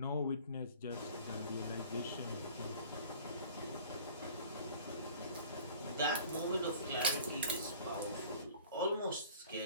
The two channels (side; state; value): both; inverted; correlation -0.47